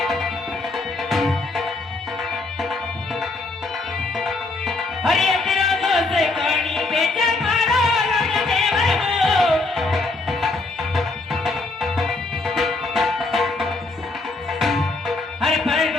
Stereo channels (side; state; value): right; quieter; 3.3 dB